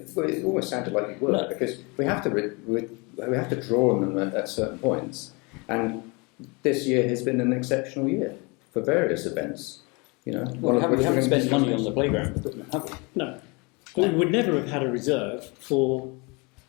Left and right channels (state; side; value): quieter; right; 28.9 dB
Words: well, it almost sounded like you were, No. because we have to draw on them at certain points. And this year has been an exceptional year for various events. You know, Well, we haven't spent money on the playground equipment, have we? No. But we would never have had a reserve for